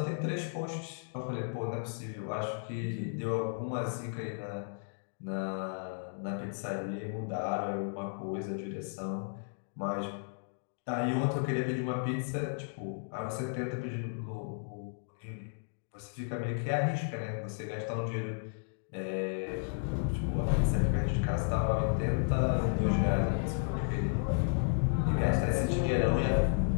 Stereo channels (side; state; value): right; silent; digital silence